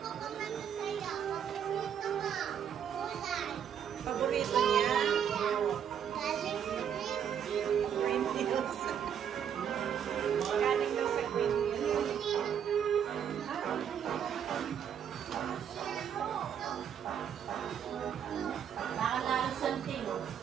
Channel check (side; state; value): left; quieter; 8.5 dB